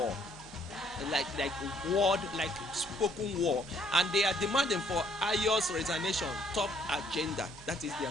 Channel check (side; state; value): both; normal; correlation 0.65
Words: Like spoken war, and they are demanding for Ayo's resignation, top agenda. That is their